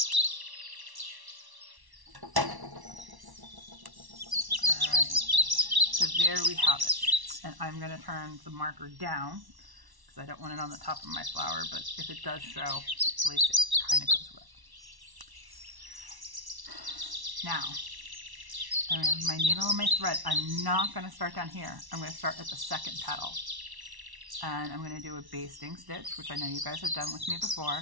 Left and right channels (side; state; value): left; late; 1.1 ms